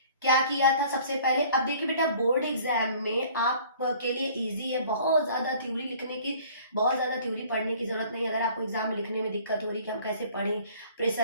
क्या किया था सबसे पहले। अब देखिए बेटा, बोर्ड एग्जाम में आप के लिए इजी है, बहुत ज्यादा थ्योरी लिखने की, बहुत ज्यादा थ्योरी पढ़ने की जरूरत नहीं। अगर आपको एग्जाम में लिखने में दिक्कत हो रही कि हम कैसे पढ़ें,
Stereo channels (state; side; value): inverted; both; correlation -0.51